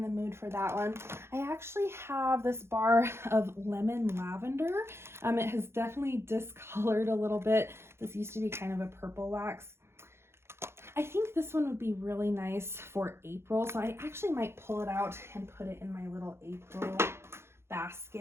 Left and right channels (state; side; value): late; left; 0.12 ms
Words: mood for that one. I actually have this bar of lemon lavender. It has definitely discolored a little bit. This used to be kind of a purple wax. I think this one would be really nice for April, so I actually might pull it out and put it in my little April